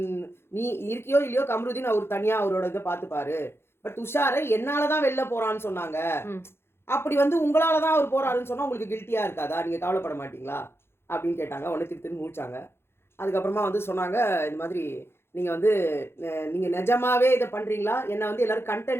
நீ இருக்கியோ இல்லையோ கம்ருதீன் அவர் தனியாக அவரோட இதை பார்த்துப்பாரு. பட் துஷாரை என்னால தான் வெளில போறான்னு சொன்னாங்க. அப்படி வந்து உங்களால தான் அவர் போறாருன்னு சொன்னா உங்களுக்கு கில்ட்டியா இருக்காதா, நீங்க கவலைப்பட மாட்டீங்களா அப்படின்னு கேட்டாங்க. உடனே திருத்தின்னு முடிச்சாங்க. அதுக்கப்புறமா வந்து சொன்னாங்க, இந்த மாதிரி நீங்க வந்து நீங்க நிஜமாவே இதை பண்றீங்களா, என்ன வந்து எல்லாரும்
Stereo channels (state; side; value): late; right; 0.12 ms